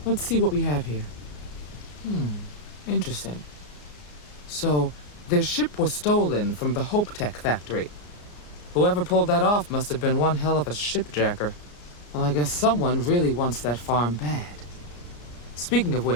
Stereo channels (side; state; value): right; late; 34 ms